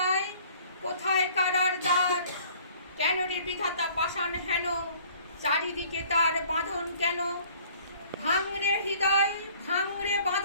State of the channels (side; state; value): both; inverted; correlation -0.54